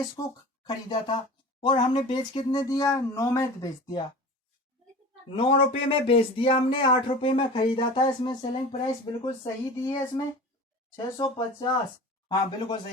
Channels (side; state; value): both; normal; correlation 0.36